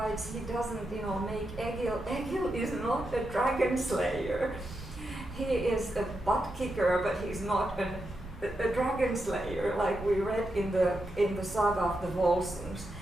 he doesn't, make Egil. Egil is not a dragon slayer. He is a butt kicker, but he's not a dragon slayer, like we read in the Saga of the Volsungs.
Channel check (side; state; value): both; normal; correlation 0.86